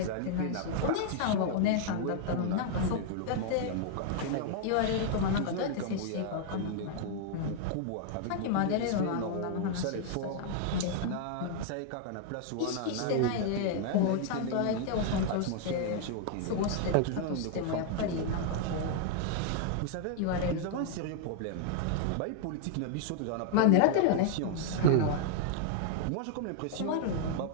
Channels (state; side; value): different; both; correlation -0.01